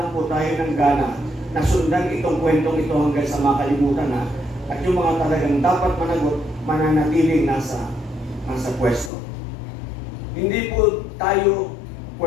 po tayo ng gana na sundan itong kwentong ito hanggang sa makalimutan na at yung mga talagang dapat managot, mananatiling nasa pwesto. Hindi po tayo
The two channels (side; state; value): right; drops out; at 9.1 s